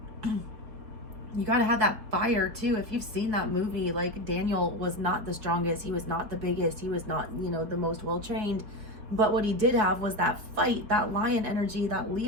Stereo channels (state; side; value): late; left; 4.3 ms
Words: You got to have that fire too. If you've seen that movie, like Daniel was not the strongest. He was not the biggest. He was not, you know, the most well-trained. But what he did have was that fight, that lion energy, that